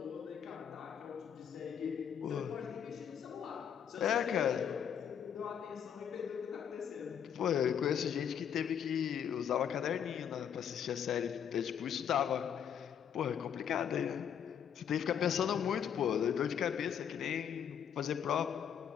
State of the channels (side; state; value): right; quieter; 8.4 dB